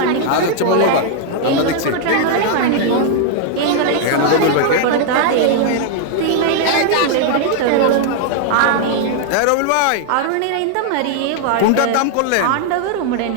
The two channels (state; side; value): different; both; correlation 0.00